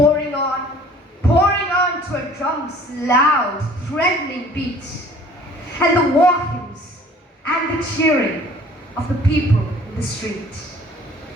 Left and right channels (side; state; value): both; normal; correlation 0.52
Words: on to a drum's loud, threatening beat, and the war hymns and the cheering of the people in the street.